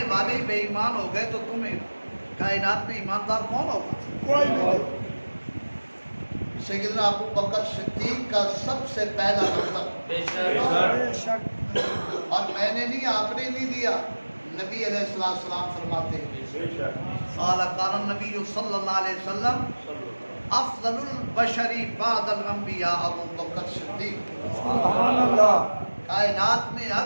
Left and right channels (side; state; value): both; inverted; correlation -1.00